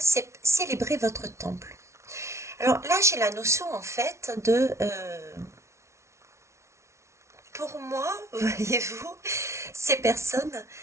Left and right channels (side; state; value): left; late; 0.13 ms